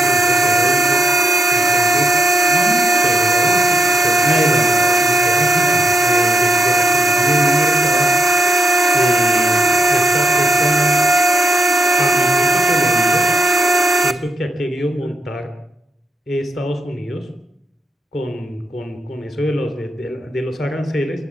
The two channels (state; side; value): normal; both; correlation 0.80